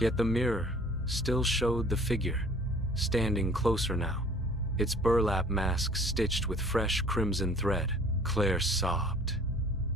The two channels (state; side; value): normal; both; correlation 0.52